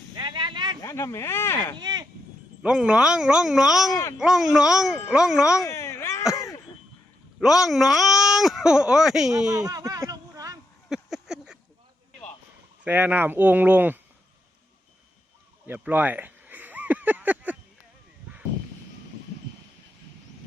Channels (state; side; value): normal; both; correlation 0.82